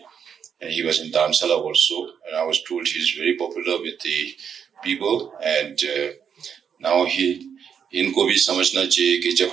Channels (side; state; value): left; quieter; 7.5 dB